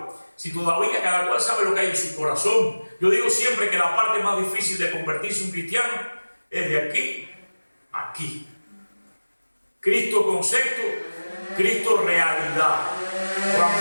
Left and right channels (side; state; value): both; inverted; correlation -1.00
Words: si todavía cada cual sabe lo que hay en su corazón, yo digo siempre que la parte más difícil de convertirse en un cristiano es de aquí a aquí. Cristo concepto, Cristo realidad.